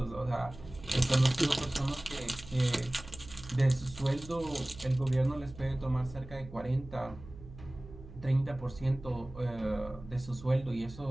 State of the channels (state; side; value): noise; right; hum, 16 dB below the sound